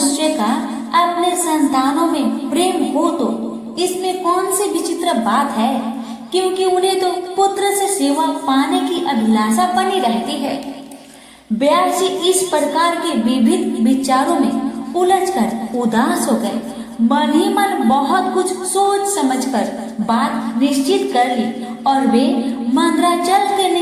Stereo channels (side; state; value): both; identical; correlation 1.00